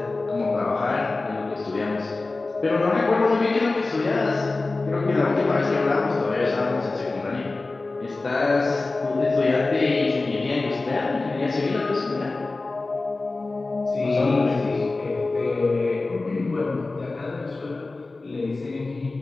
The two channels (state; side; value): quieter; right; 3.4 dB